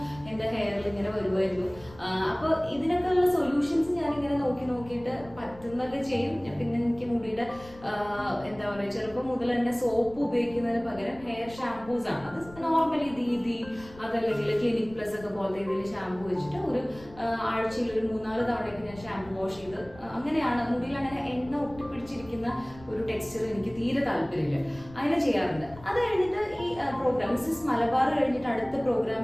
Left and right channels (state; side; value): noise; left; rumble, 20 dB below the sound